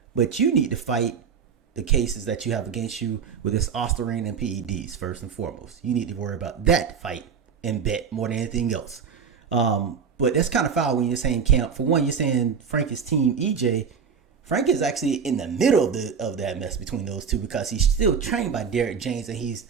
But you need to fight the cases that you have against you with this Ostarine and PEDs first and foremost. You need to worry about that fight and bet more than anything else. But that's kind of foul when you're saying camp. For one, you're saying Frank is team EJ. Frank is actually in the middle of that mess between those two, because he's still trained by Derek James and he's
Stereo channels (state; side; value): quieter; left; 6.6 dB